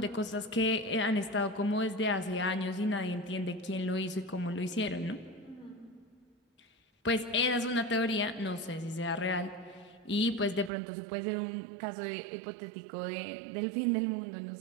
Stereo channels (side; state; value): left; drops out; at 10.7 s